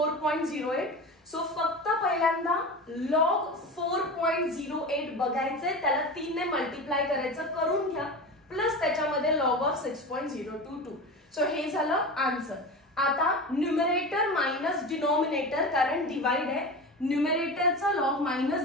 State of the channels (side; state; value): both; normal; correlation 0.28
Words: So फक्त पहिल्यांदा log 4.08 बघायचंय, त्याला 3 ने मल्टिप्लाय करायचं, करून घ्या, प्लस त्याच्यामध्ये log ऑफ 6.022. सो हे झालं आन्सर. आता न्यूमरेटर मायनस डिनॉमिनेटर, कारण डिवाइड आहे, न्यूमरेटरचा लॉग